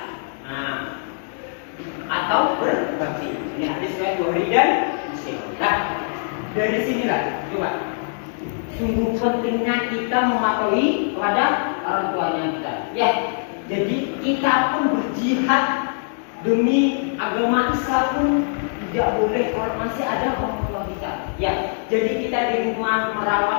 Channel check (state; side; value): silent; right; digital silence